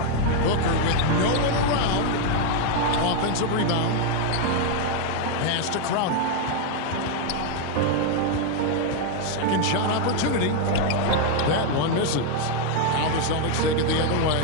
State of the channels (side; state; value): both; different; correlation 0.01